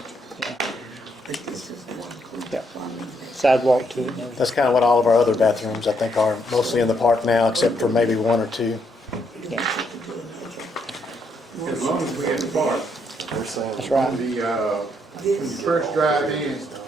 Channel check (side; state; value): both; normal; correlation 0.75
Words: Sidewalk to it. and everything. that's kind of what all of our other bathrooms, I think, are mostly in the park now, except for maybe one or two. As long as we're in the park, They're saying. That's right. on the, when you first drive in,